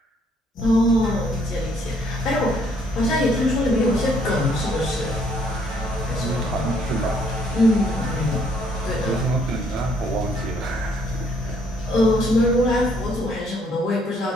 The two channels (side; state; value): both; normal; correlation 0.67